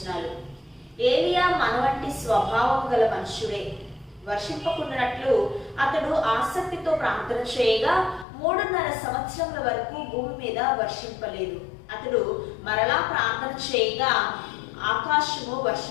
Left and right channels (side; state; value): right; drops out; at 8.2 s